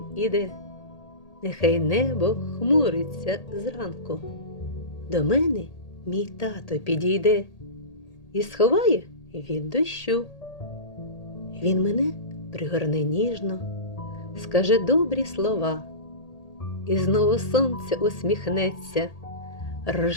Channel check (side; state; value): right; late; 1.8 ms